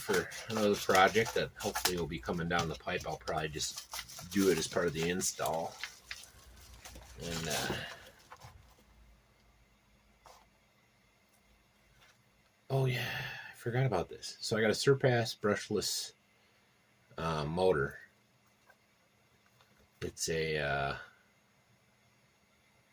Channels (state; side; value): identical; both; correlation 1.00